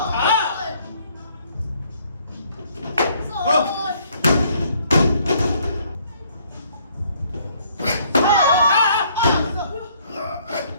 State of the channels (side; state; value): both; inverted; correlation -0.64